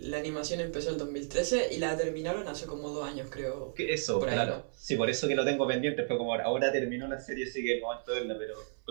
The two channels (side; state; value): left; silent; 56 dB below the other